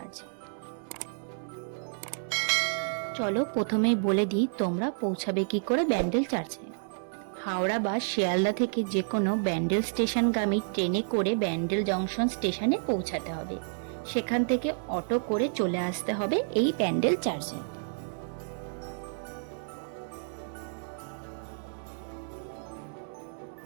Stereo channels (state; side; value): silent; left; digital silence